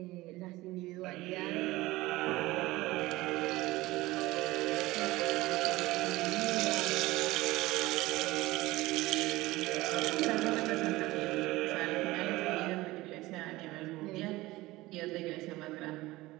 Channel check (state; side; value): quieter; left; 19.1 dB